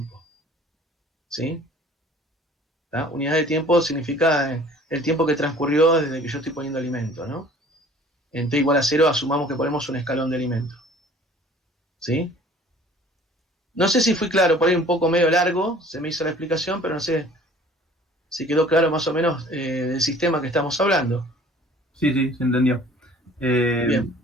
¿Sí? ¿Tá? Unidad de tiempo significa el tiempo que transcurrió desde que yo estoy poniendo alimento, ¿no? En t igual a 0 asumamos que ponemos un escalón de alimento. ¿Sí? No sé si fui claro, por ahí un poco medio largo, se me hizo la explicación, pero no sé si quedó claro más o menos del sistema que estamos hablando. Sí, sí, se entendió. Bien.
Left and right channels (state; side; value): normal; both; correlation 0.50